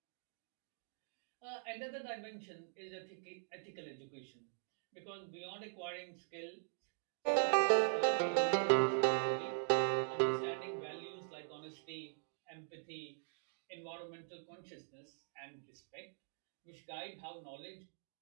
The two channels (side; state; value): left; silent; digital silence